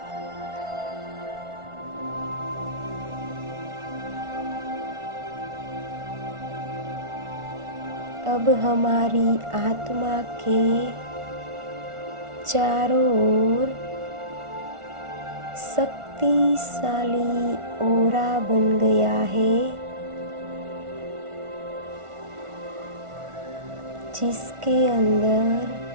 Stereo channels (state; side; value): late; left; 1.4 ms